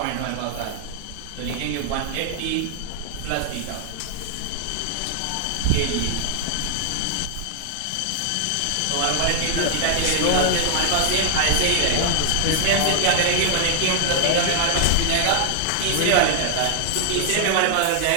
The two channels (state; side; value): different; both; correlation 0.00